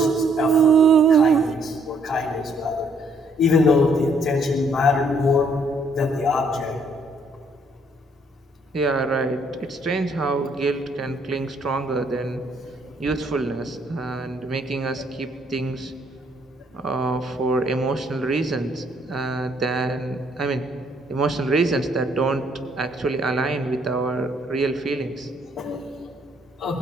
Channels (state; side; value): normal; both; correlation 0.67